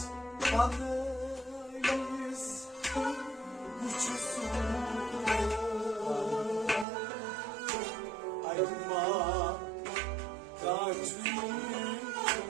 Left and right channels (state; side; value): drops out; left; at 6.9 s